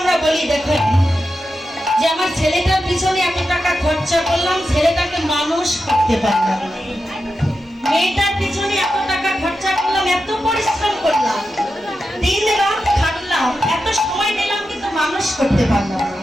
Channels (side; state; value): both; normal; correlation 0.90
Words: বলি, দেখেন যে আমার ছেলেটার পিছনে এত টাকা খরচা করলাম, ছেলেটাকে মানুষ করতে পারলাম না। মেয়েটার পিছনে এত টাকা খরচা করলাম, এত পরিশ্রম করলাম, দিন রাত খাটলাম, এত সময় নিলাম, কিন্তু মানুষ করতে পারলাম না।